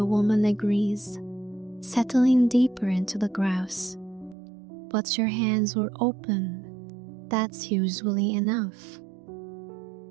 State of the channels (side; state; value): left; drops out; at 4.4 s